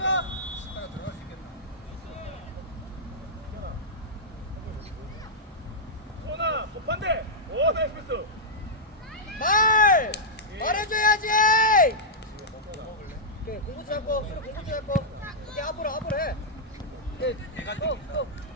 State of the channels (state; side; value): normal; both; correlation -0.09